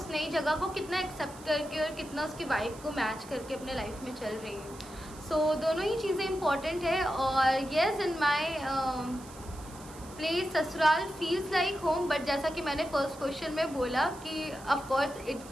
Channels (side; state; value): right; noise; hiss, 19 dB below the sound